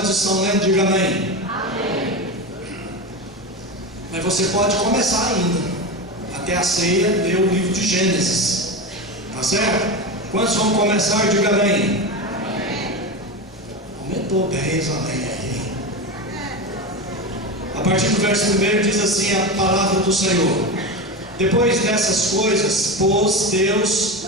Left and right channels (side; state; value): both; normal; correlation 0.21